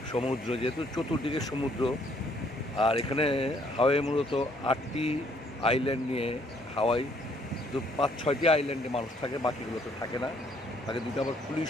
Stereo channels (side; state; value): both; normal; correlation 0.66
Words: সমুদ্র, যেহেতু চতুর্দিকে সমুদ্র। আর এখানে হাওয়াই মূলত 8টি আইল্যান্ড নিয়ে হাওয়াই, তো 5-6টি আইল্যান্ডে মানুষ থাকে, বাকিগুলো তো থাকে না। তাকে দুটো আবার